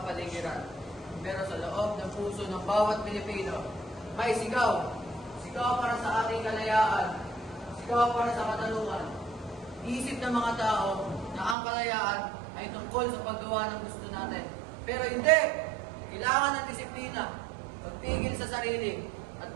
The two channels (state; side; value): drops out; left; at 11.6 s